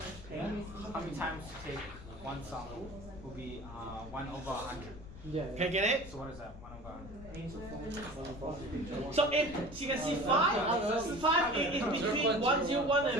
Yeah? How many times to take one sample will be 1 over 100. Yeah. Can you get it? So what is that? 1 over 100. So if you can see 5 is between 101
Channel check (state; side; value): noise; left; rumble, 14 dB below the sound